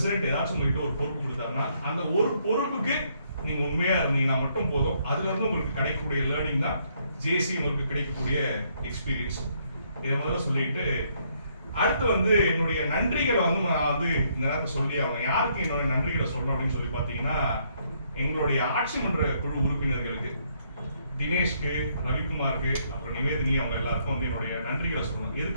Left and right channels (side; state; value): both; inverted; correlation -0.71